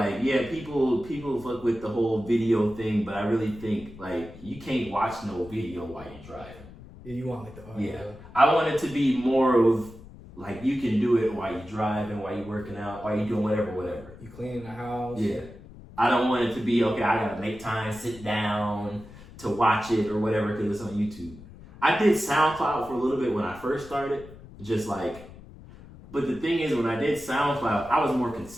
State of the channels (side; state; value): left; noise; rumble, 18 dB below the sound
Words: yeah, people fuck with the whole video thing, but I really think, like, you can't watch no video while you're driving. Yeah, you want like the audio. Yeah, I want it to be more of, like, you can do it while you're driving, while you're working out, while you're doing whatever. You cleaning the house. Yeah. I don't want it to be, okay, I gotta make time, sit down to watch it or whatever because it's on YouTube. I did SoundCloud for a little bit when I first started, just like, but the thing is, when I did SoundCloud, I was more